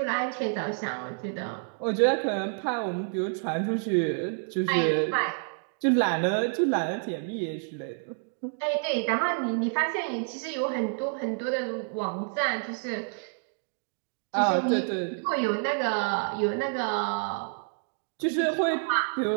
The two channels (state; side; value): silent; left; 59 dB below the other